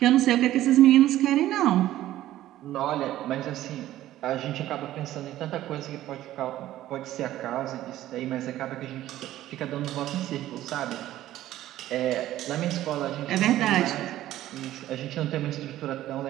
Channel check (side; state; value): left; quieter; 14.0 dB